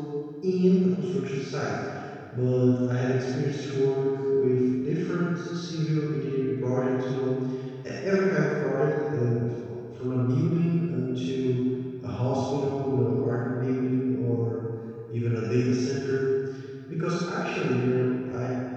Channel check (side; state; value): both; identical; correlation 1.00